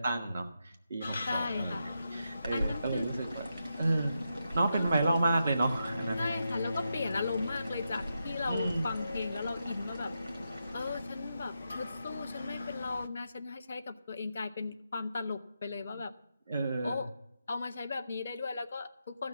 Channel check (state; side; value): inverted; both; correlation -0.86